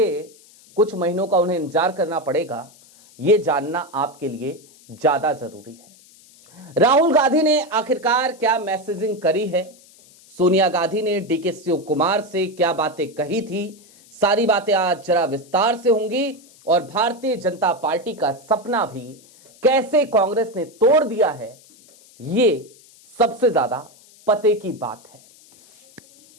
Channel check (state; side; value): noise; left; hiss, 26 dB below the sound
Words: कुछ महीनों का उन्हें इंतजार करना पड़ेगा, यह जानना आपके लिए ज्यादा जरूरी है। राहुल गांधी ने आखिरकार क्या मैसेजिंग करी है? सोनिया गांधी ने डीके शिवकुमार से क्या बातें कही थी? सारी बातें आज जरा विस्तार से होंगी, और भारतीय जनता पार्टी का सपना भी कैसे कांग्रेस ने तोड़ दिया है, ये सबसे ज्यादा पते की बात है।